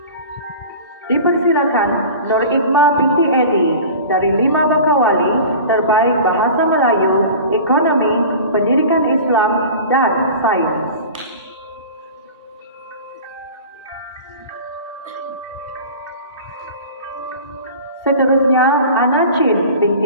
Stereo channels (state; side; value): inverted; both; correlation -0.37